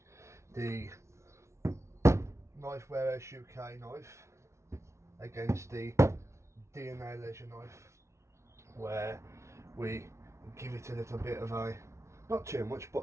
the Knifewarehouseuk knife against the DNALEISURE knife, where we give it a little bit of a, not too much,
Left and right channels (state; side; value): late; left; 0.13 ms